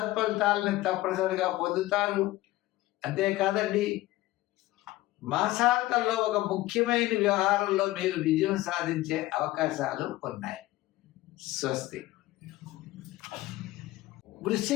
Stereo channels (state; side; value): quieter; right; 17.3 dB